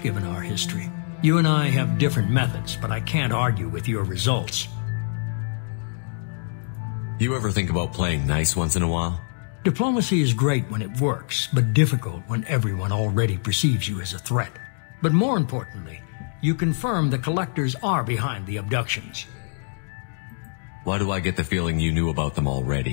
given our history. You and I have different methods, but I can't argue with your results. You ever think about playing nice once in a while? Diplomacy is great when it works, but difficult when everyone already perceives you as a threat. But more importantly, you confirm the collectors are behind the abductions. Why do I get the feeling you knew about them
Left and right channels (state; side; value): silent; right; digital silence